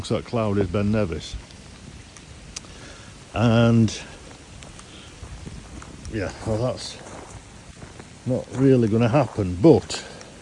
that cloud is Ben Nevis. And yeah, well, that's not really going to happen, but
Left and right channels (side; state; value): both; identical; correlation 1.00